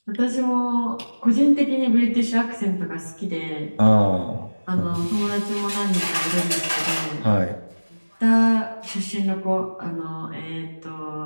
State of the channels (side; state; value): both; inverted; correlation -1.00